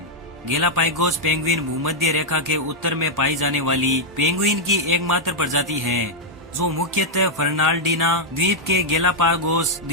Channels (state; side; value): normal; both; correlation -0.04